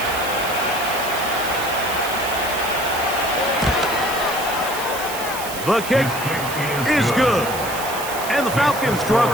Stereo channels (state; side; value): noise; right; hiss, 9 dB below the sound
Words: The kick is good. And the Falcons draw